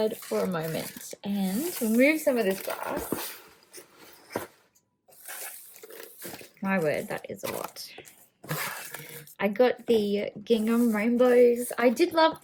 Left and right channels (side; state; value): both; identical; correlation 1.00